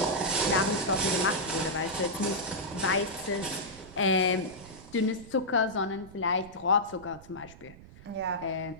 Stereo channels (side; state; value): right; noise; rumble, 19 dB below the sound